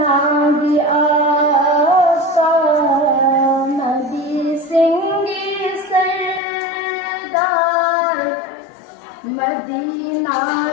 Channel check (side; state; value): right; drops out; at 6.4 s